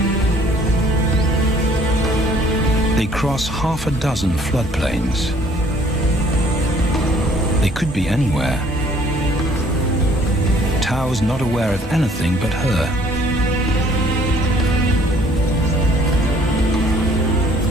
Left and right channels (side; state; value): both; normal; correlation 0.58